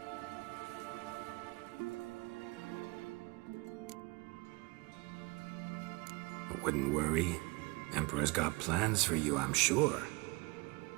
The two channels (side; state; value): left; quieter; 25.8 dB